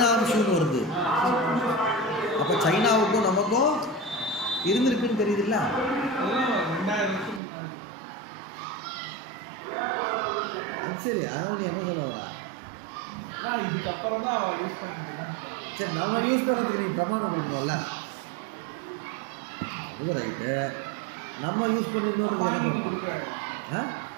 வருது. அப்போ சைனாவுக்கும் நமக்கும் இருந்திருக்குன்னு தெரியுதுல்ல. அது சரி, அதனால நீ என்ன சொல்ல வரா? இதுக்கப்புறம் தான் யூஸ் பண்ணிக்கிறேன். சரி, நம்ம யூஸ் பண்ணுறதுக்கு நீ பிரமாணம் கொடுக்கணும்ல. அது ரைட்டு. நம்ம யூஸ் பண்ணியிருந்தோன்றது என்ன பாணினி பண்ணுறோம்? கொடுக்குறாரு. ஆ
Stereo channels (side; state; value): left; drops out; at 7.4 s